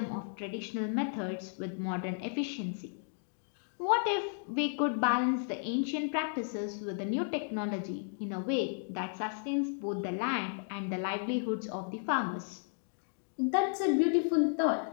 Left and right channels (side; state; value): right; silent; digital silence